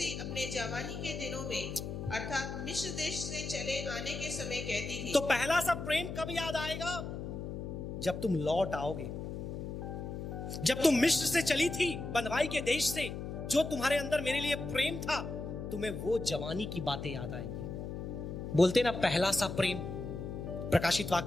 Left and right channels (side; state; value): left; noise; hum, 6 dB below the sound